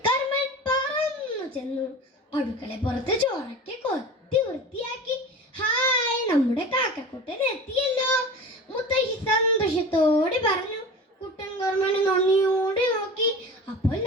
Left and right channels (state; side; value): normal; both; correlation 0.34